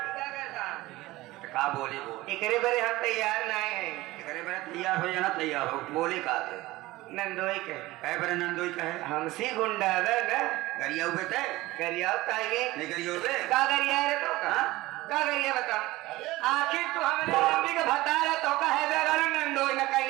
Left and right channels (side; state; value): left; quieter; 18.7 dB